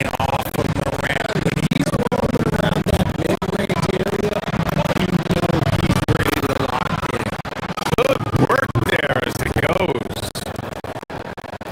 off of Moran. When he's rolling around that mid-range area, you know he's ready to lock in. Good work there as it goes.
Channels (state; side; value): identical; both; correlation 1.00